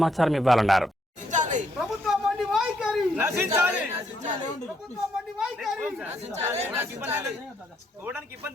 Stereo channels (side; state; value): both; normal; correlation 0.74